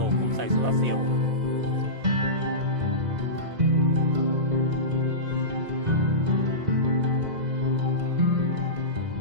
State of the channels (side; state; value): left; late; 2.0 ms